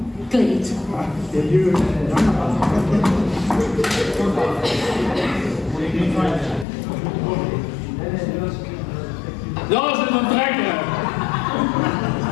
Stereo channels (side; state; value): right; drops out; at 6.7 s